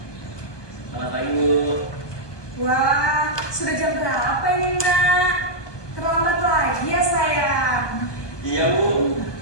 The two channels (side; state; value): right; late; 1.2 ms